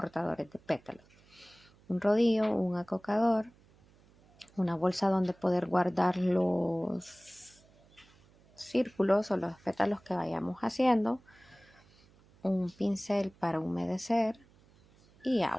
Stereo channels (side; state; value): right; noise; hum, 29 dB below the sound